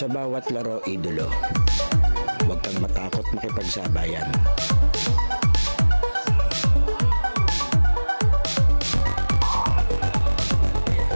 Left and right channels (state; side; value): inverted; both; correlation -1.00